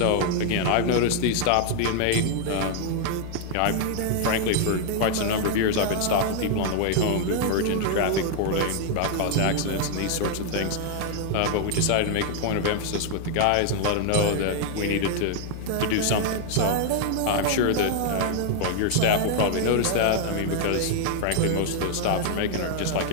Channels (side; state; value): both; different; correlation 0.00